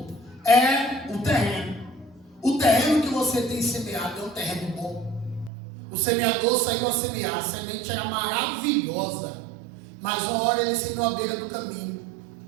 é o terreno. O terreno que você tem semeado é um terreno bom. O semeador saiu a semear, a semente era maravilhosa, mas uma hora ele semeou à beira do caminho,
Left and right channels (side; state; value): left; drops out; at 5.5 s